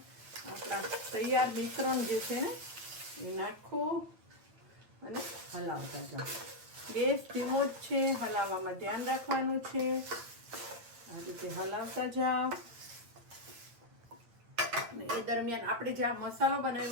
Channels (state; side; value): late; left; 8.9 ms